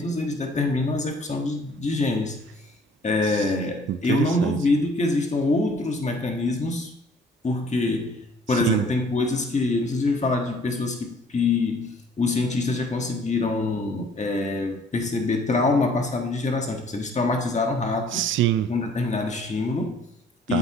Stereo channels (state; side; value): normal; both; correlation 0.56